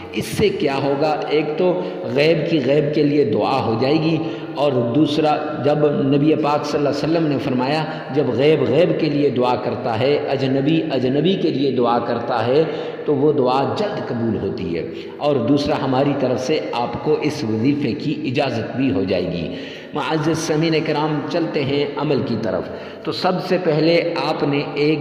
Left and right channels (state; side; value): identical; both; correlation 1.00